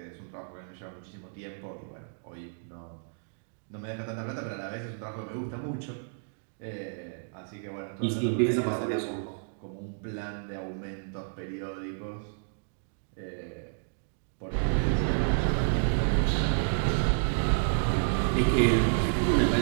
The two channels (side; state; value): left; silent; digital silence